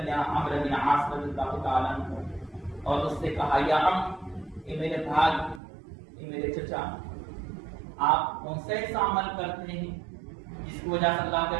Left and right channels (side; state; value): left; drops out; at 5.6 s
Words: بن عمرو بن عاص رضی اللہ تعالیٰ عنہ، اور اس سے کہا یا اے میرے بھائی، اے میرے چچا، آپ کون سے ایسا عمل کرتے ہیں جس کی وجہ سے اللہ کے